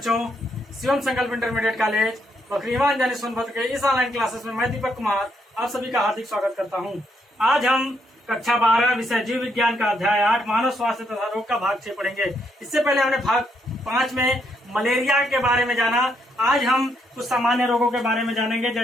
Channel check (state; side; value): normal; both; correlation 0.75